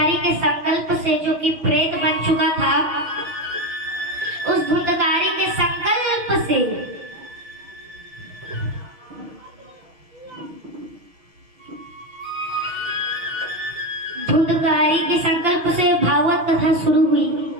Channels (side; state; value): left; late; 6.3 ms